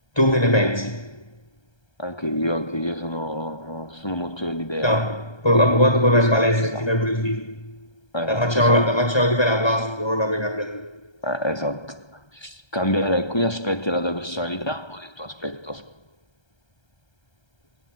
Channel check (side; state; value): right; late; 1.3 ms